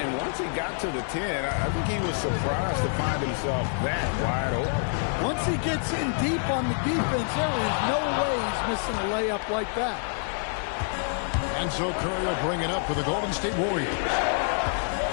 once he got to the 10, I think he was surprised to find himself that wide open. Once he gets in deep on the defense, there is no way he's missing a layup like that. And so Curry will bring it up for the Golden State Warriors.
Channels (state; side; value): silent; right; 60 dB below the other